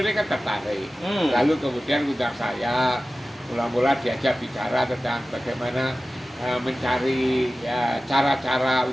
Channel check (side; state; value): both; normal; correlation 0.96